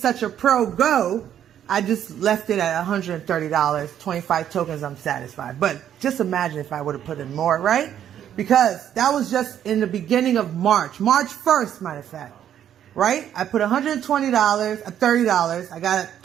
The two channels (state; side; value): quieter; left; 10.1 dB